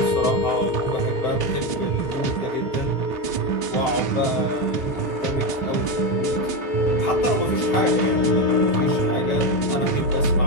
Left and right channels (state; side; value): late; right; 3.7 ms